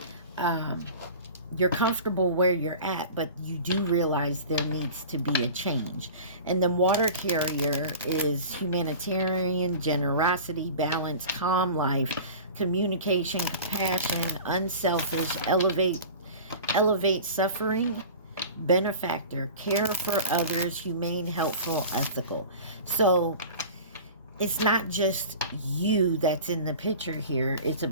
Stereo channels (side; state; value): both; inverted; correlation -0.37